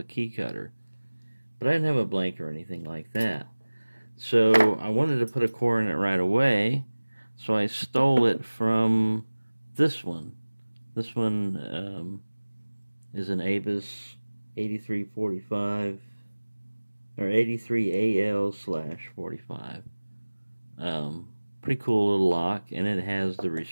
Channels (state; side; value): inverted; both; correlation -1.00